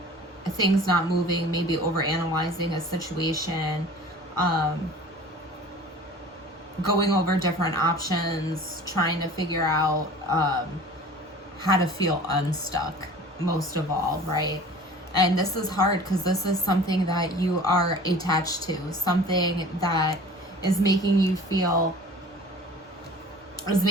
Things not moving, maybe overanalyzing a situation, going over different options, trying to figure out how to feel unstuck, most of all, right? And this is hard because this is something that you are attached to, something that is making you feel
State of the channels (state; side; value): normal; both; correlation 0.43